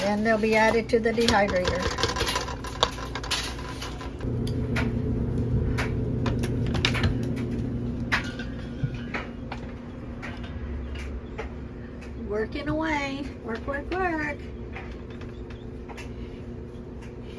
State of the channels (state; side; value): identical; both; correlation 1.00